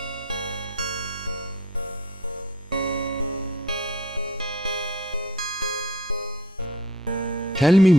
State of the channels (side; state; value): both; normal; correlation 0.51